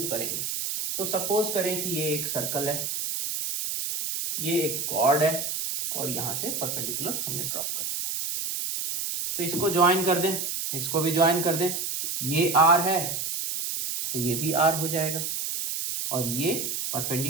करेंगे। तो सपोज करें कि ये एक सर्कल है, ये एक कॉर्ड है और यहां से परपेंडिकुलर हमने ड्रॉप कर दिया। तो इसको ज्वाइन कर दें, इसको भी ज्वाइन कर दें। ये आर है तो ये भी आर हो जाएगा और ये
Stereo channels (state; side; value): noise; right; hiss, 3 dB below the sound